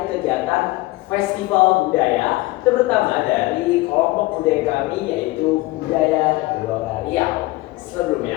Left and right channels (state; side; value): quieter; right; 20.1 dB